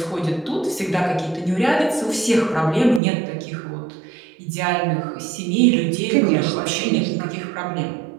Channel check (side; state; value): left; drops out; at 3.0 s